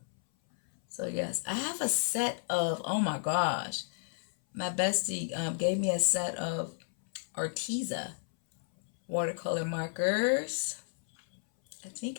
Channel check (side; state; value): right; silent; 56 dB below the other